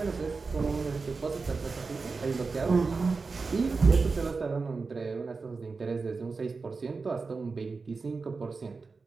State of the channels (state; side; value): quieter; left; 4.4 dB